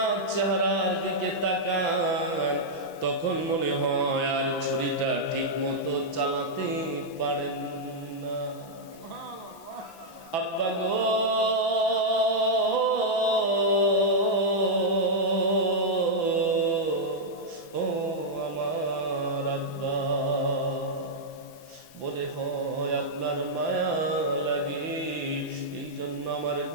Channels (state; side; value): late; right; 6.0 ms